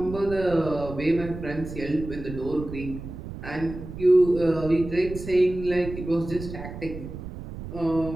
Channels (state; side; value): noise; right; rumble, 10 dB below the sound